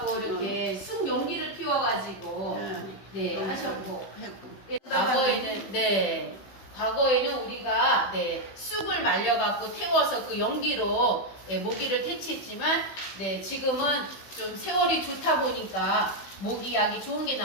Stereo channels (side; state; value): right; late; 16 ms